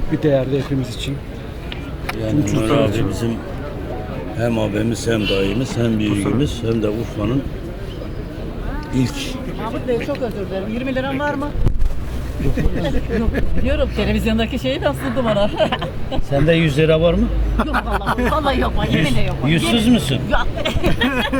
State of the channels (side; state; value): both; identical; correlation 1.00